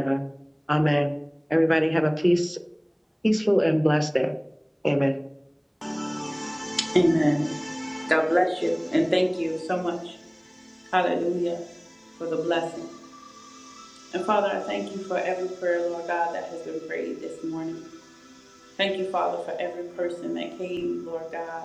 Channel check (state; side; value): identical; both; correlation 1.00